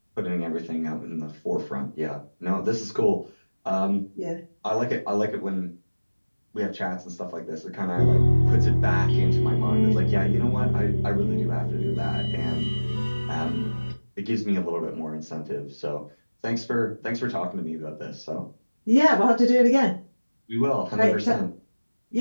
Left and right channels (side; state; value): both; inverted; correlation -1.00